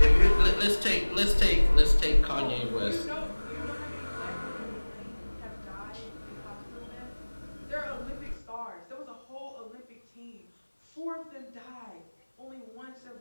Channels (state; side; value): inverted; both; correlation -1.00